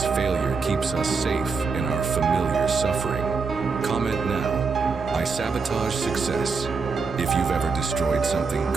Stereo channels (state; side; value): quieter; left; 4.8 dB